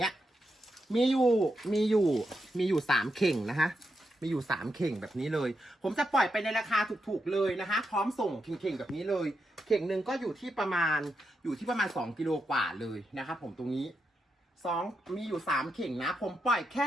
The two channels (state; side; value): normal; both; correlation 0.85